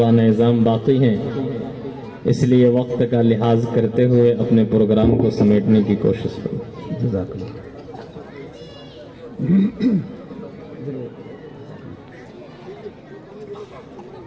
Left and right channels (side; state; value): both; identical; correlation 1.00